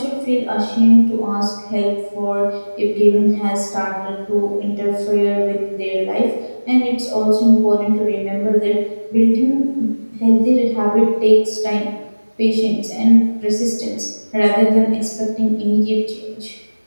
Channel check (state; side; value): inverted; both; correlation -1.00